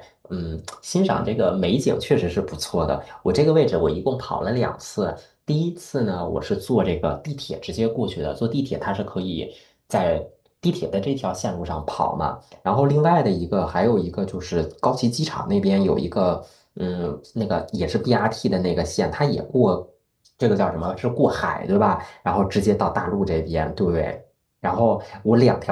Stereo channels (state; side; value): identical; both; correlation 1.00